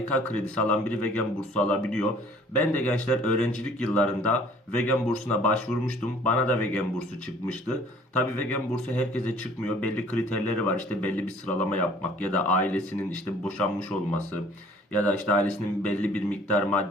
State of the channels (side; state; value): both; normal; correlation 0.54